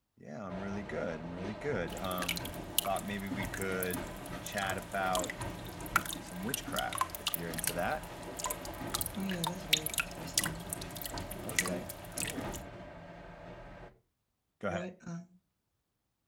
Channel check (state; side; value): identical; both; correlation 1.00